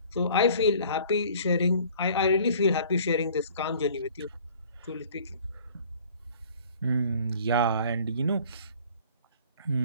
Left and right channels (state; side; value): inverted; both; correlation -0.51